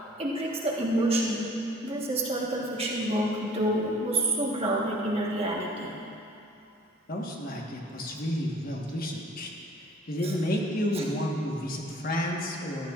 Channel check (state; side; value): normal; both; correlation 0.53